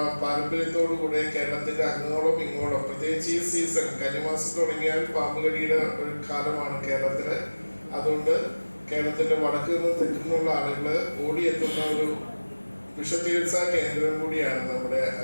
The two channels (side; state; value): both; inverted; correlation -1.00